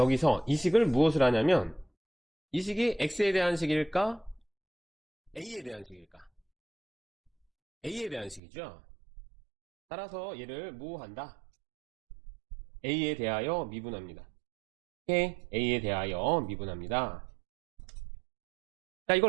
이 식을 무엇을 하냐면 이 식이 x에 대한 식일까? a에 대한 식일까? a에 대한 식이죠. 따라서 얘를 뭐 한다? a에 대하여 미분합니다. 오케이? a에 대하여 미분합니다. 자,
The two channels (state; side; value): drops out; left; at 8.4 s